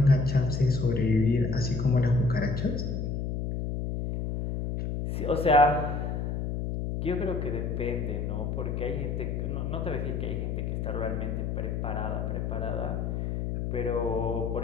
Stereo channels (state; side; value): noise; left; hum, 2 dB below the sound